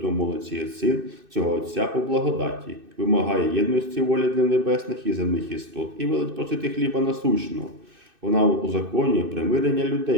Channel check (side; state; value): left; late; 2.6 ms